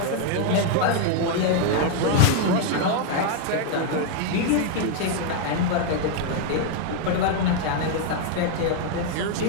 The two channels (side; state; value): both; different; correlation 0.00